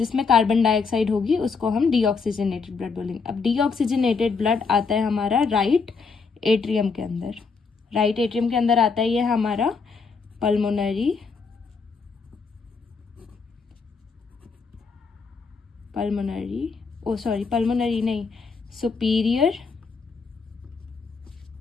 कार्बन डाइऑक्साइड होगी उसको हम डीऑक्सीजनेटेड ब्लड बोलेंगे। अब डीऑक्सीजनेटेड ब्लड आता है हमारा राइट एट्रियम के अंदर। राइट एट्रियम के अंदर आता है ये हमारा पल्मोनरी नहीं, सुपीरियर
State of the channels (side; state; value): right; quieter; 4.9 dB